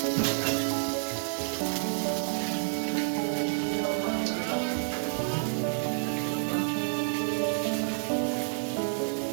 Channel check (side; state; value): left; silent; digital silence